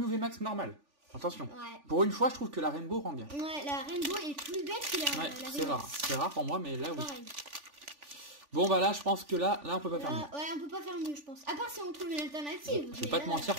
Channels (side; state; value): left; late; 3.5 ms